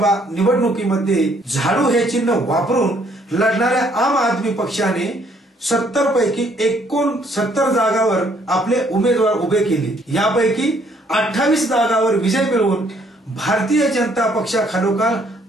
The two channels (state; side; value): normal; both; correlation 0.65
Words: निवडणुकीमध्ये झाडू हे चिन्ह वापरून लढणाऱ्या आम आदमी पक्षाने 70 पैकी 69 जागावर आपले उमेदवार उभे केले। यापैकी 28 जागावर विजय मिळवून भारतीय जनता पक्षाखालोखाल